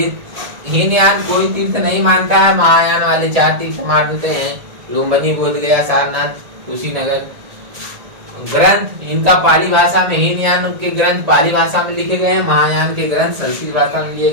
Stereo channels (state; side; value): late; left; 1.8 ms